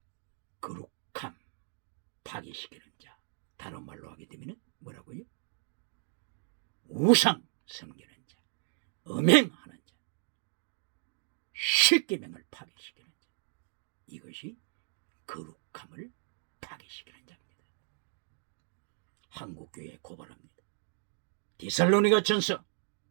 거룩함 파괴시키는 자, 다른 말로 하게 되면 뭐라고요? 우상 섬기는 자, 음행하는 자, 십계명을 파괴시키는 자, 이것이 거룩함을 파괴시키는 자입니다. 한국교회에 고발합니다. 데살로니가 전서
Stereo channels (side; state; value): left; silent; 55 dB below the other